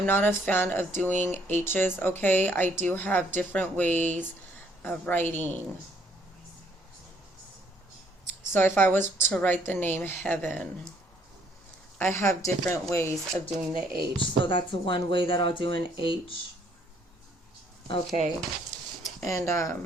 not a fan of doing H's, okay? I do have different ways of writing. So if I was to write the name Heaven, I have different ways of doing the H. So that's one way that I'll do an H. Okay. And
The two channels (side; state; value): both; normal; correlation 0.66